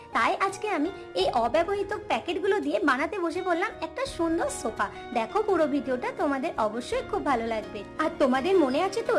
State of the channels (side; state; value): both; identical; correlation 1.00